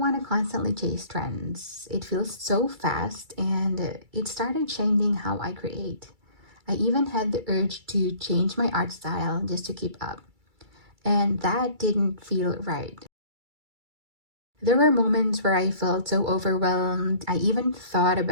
want to constantly chase trends. It feels so fast, and it started changing how I create. I even had the urge to change my art style just to keep up. And that didn't feel right. There were moments where I felt so overwhelmed, I even thought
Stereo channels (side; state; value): left; late; 2.3 ms